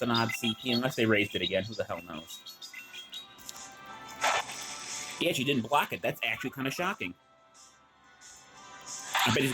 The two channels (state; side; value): identical; both; correlation 1.00